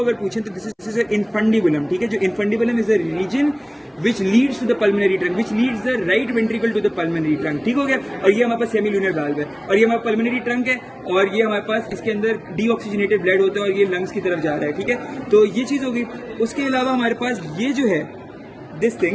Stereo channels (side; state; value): both; identical; correlation 1.00